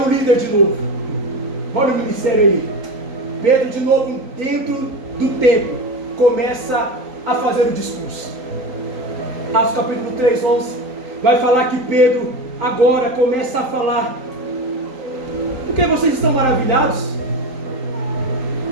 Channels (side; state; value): left; late; 3.9 ms